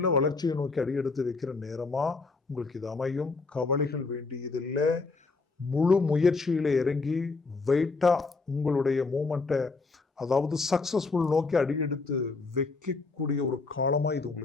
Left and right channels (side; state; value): right; quieter; 4.0 dB